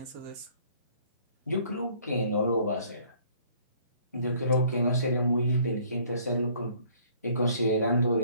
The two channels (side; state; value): both; inverted; correlation -0.59